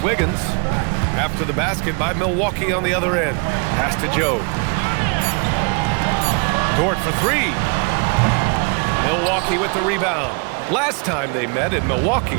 Wiggins. After the basket by Milwaukee on the other end. Pass to Joe. Dort for 3. Milwaukee with the rebound. Last time they met in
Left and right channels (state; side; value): quieter; left; 36.4 dB